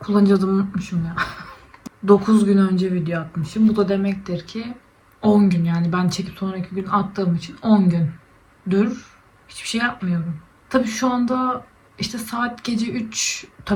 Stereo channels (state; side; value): identical; both; correlation 1.00